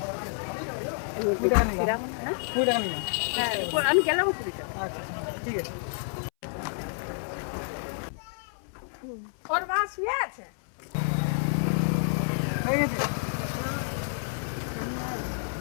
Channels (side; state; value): right; silent; 58 dB below the other